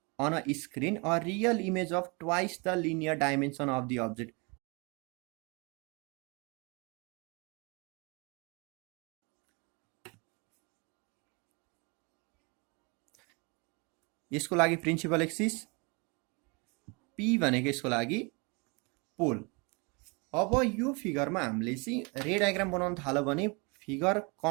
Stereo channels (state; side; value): quieter; left; 30.3 dB